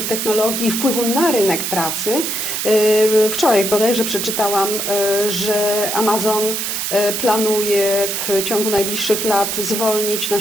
technologii i wpływu na rynek pracy. Wczoraj bodajże przeczytałam, że Amazon planuje w ciągu najbliższych lat zwolnić na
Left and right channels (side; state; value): right; noise; hiss, 2 dB below the sound